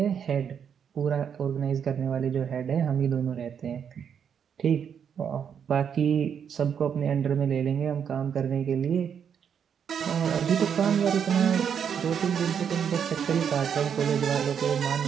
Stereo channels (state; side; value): quieter; left; 7.7 dB